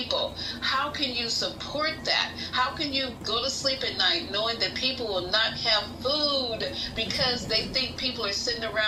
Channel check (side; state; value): both; identical; correlation 1.00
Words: How can you support that? How can you go to sleep at night knowing that people will not have food because they think people are sitting